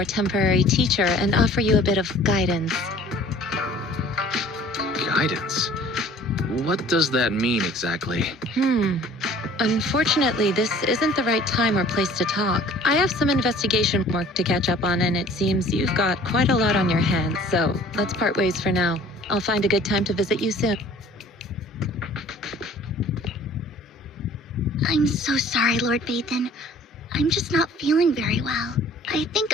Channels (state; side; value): normal; both; correlation 0.51